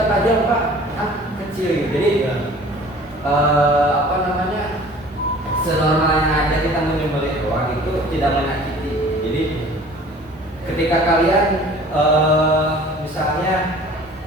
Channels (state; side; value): normal; both; correlation 0.47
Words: tajam pak, kecil. Jadi senormalnya aja kita menyembelih doang itu tidak menyakiti. Jadi ketika kalian misalnya